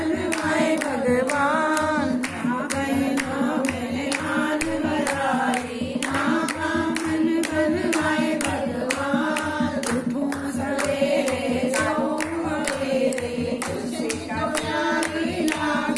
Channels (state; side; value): identical; both; correlation 1.00